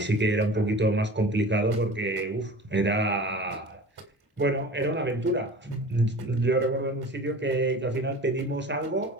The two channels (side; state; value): both; normal; correlation 0.39